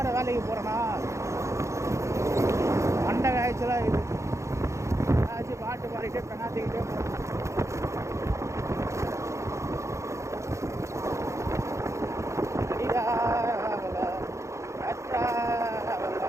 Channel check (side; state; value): left; late; 0.14 ms